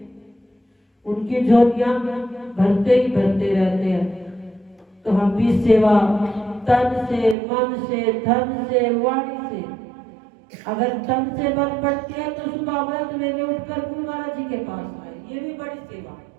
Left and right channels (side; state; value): left; drops out; at 7.4 s